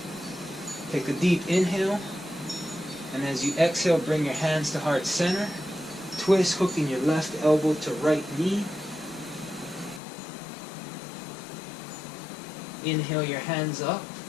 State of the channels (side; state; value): right; drops out; at 10.0 s